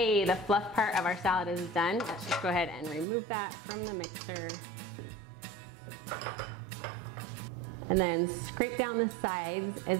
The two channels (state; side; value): drops out; left; at 3.1 s